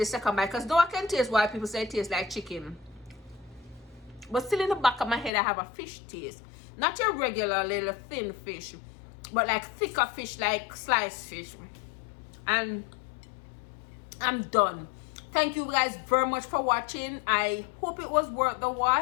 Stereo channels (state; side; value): drops out; right; at 5.3 s